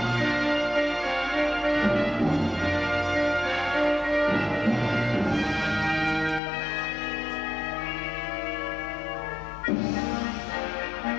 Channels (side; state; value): right; drops out; at 6.4 s